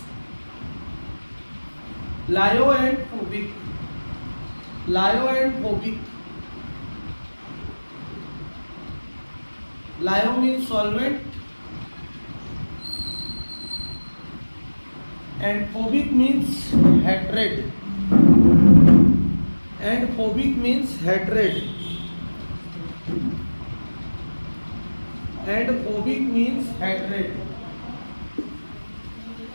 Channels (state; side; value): inverted; both; correlation -1.00